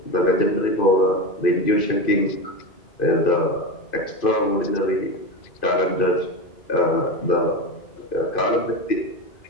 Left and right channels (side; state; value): right; late; 2.5 ms